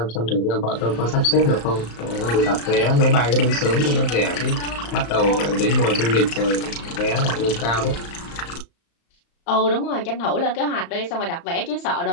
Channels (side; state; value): right; late; 35 ms